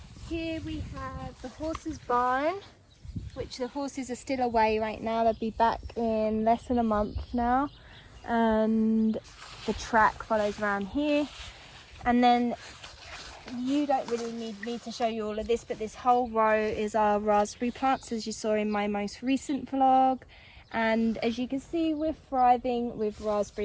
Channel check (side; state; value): both; identical; correlation 1.00